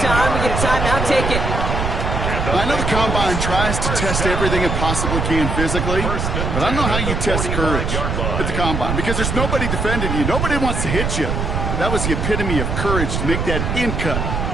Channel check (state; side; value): noise; right; rumble, 1 dB below the sound